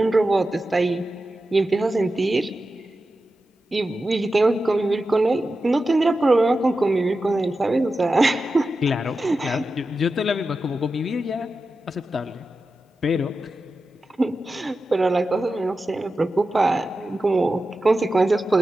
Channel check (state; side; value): normal; both; correlation 0.92